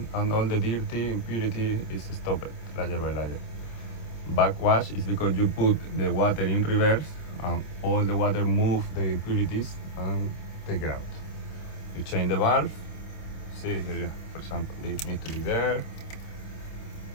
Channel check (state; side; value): late; right; 26 ms